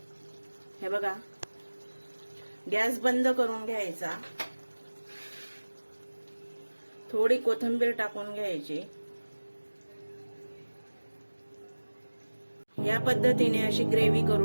हे बघा, गॅस बंद करून घ्यायचा। थोडी कोथिंबीर टाकून घ्यायची। या पद्धतीने अशी ग्रेव्ही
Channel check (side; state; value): both; inverted; correlation -1.00